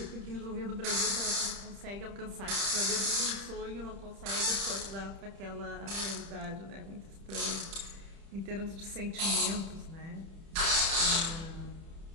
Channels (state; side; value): late; left; 30 ms